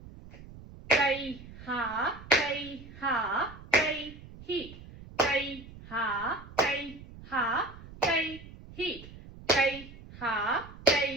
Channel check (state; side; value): noise; right; rumble, 17 dB below the sound